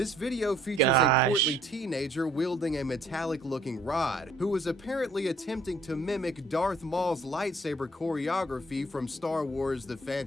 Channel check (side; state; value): both; normal; correlation 0.61